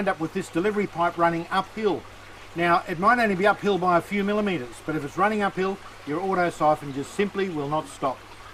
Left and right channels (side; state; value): both; identical; correlation 1.00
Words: up with this delivery pipe running uphill. Now, it might only be uphill by a few millimetres, but if it's running uphill, your auto siphon just simply will not stop.